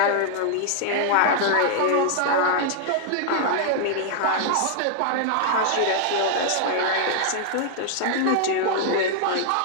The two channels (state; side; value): different; both; correlation -0.01